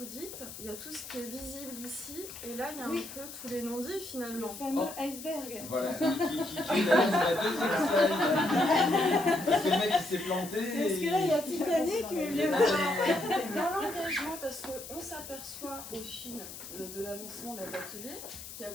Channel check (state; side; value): noise; left; hiss, 12 dB below the sound